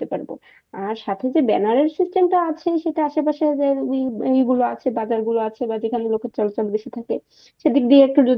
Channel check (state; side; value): identical; both; correlation 1.00